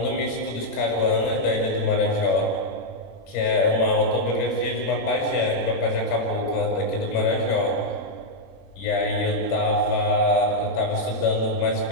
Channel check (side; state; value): right; late; 21 ms